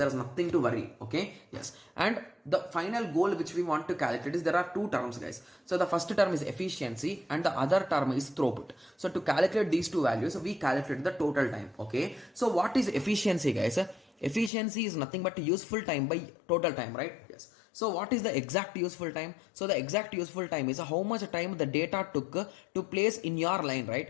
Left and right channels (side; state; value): right; drops out; at 14.5 s